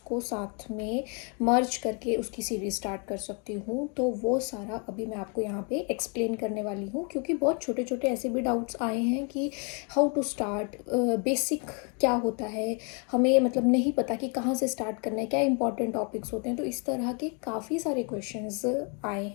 को साथ में मर्ज करके उसकी सीरीज स्टार्ट कर सकती हूँ, तो वो सारा अभी मैं आपको यहाँ पे एक्सप्लेन करने वाली हूँ। क्योंकि बहुत छोटे छोटे ऐसे भी डाउट्स आए हैं कि हाउ टू स्टार्ट, बेसिक क्या होता है, हमें मतलब नहीं पता कि कहाँ से स्टार्ट करना है, क्या इंपॉर्टेंट टॉपिक्स होते हैं। तो इस तरह के काफ़ी सारे क्वेश्चंस आए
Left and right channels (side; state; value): right; quieter; 36.4 dB